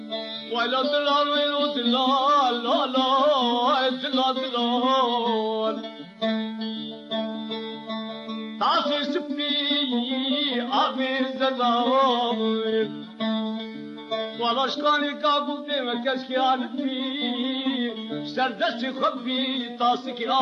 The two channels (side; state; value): both; identical; correlation 1.00